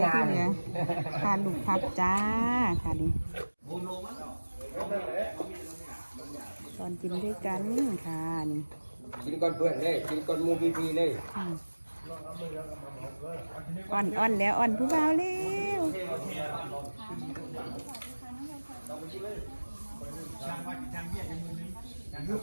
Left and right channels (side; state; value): both; inverted; correlation -1.00